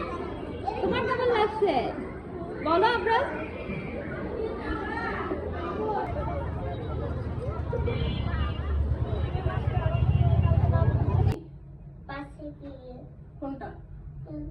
তোমার কেমন লাগছে বলো আমরা। কোনটা?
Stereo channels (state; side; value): identical; both; correlation 1.00